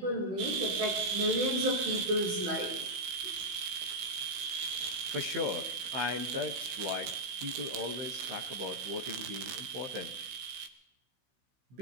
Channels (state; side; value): late; left; 16 ms